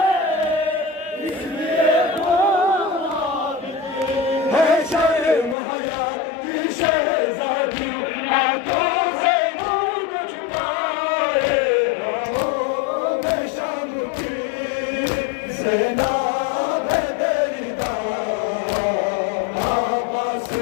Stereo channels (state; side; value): drops out; right; at 5.6 s